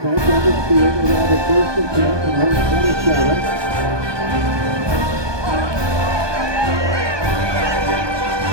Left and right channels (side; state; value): left; late; 1.2 ms